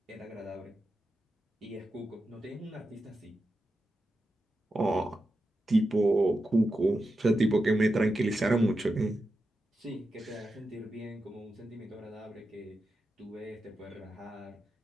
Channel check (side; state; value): both; normal; correlation 0.89